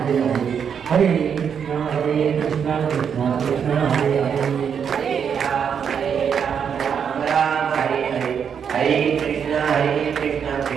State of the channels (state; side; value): quieter; left; 7.4 dB